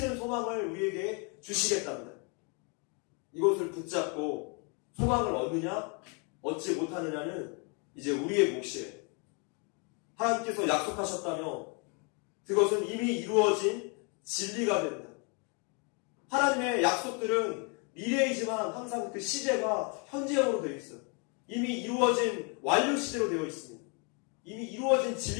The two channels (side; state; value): right; quieter; 35.1 dB